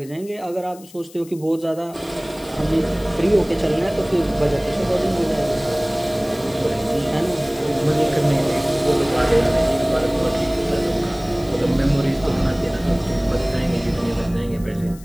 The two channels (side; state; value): left; noise; hiss, 22 dB below the sound